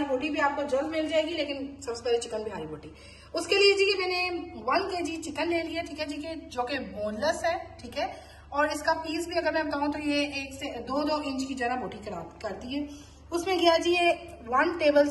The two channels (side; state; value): both; identical; correlation 1.00